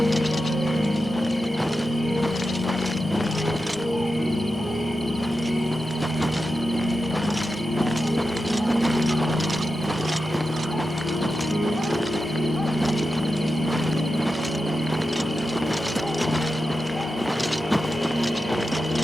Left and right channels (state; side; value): normal; both; correlation 0.90